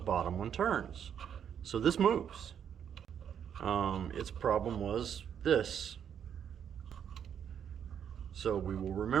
one turns. So this moves. Its problem was this. So we will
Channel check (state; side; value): quieter; left; 8.5 dB